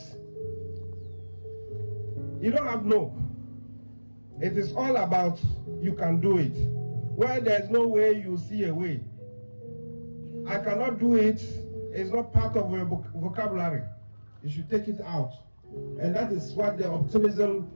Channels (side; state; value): both; inverted; correlation -1.00